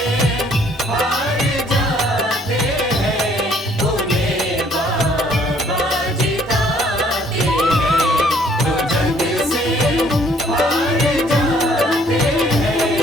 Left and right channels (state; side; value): normal; both; correlation 0.62